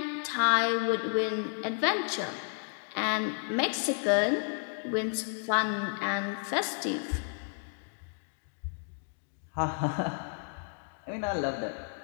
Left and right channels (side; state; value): right; silent; 56 dB below the other